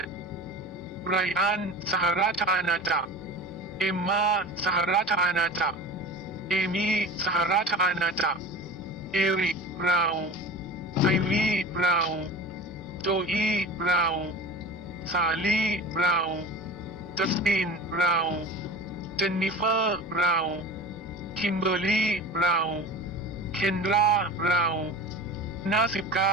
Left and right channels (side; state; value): both; normal; correlation 0.35